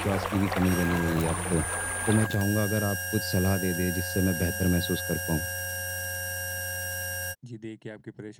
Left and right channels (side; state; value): both; identical; correlation 1.00